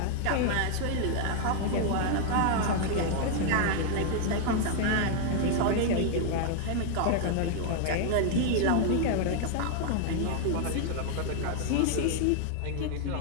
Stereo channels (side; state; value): both; different; correlation 0.00